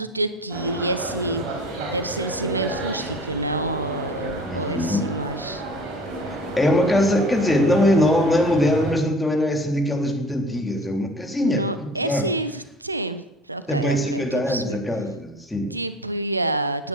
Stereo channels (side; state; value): both; normal; correlation 0.44